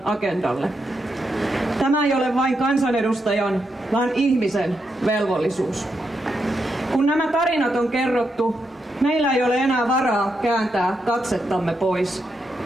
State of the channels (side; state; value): both; normal; correlation 0.83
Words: agendalle. Tämä ei ole vain kansanedustajan, vaan ihmisen velvollisuus. Kun nämä tarinat on kerrottu, meillä ei ole enää varaa kääntää katsettamme pois.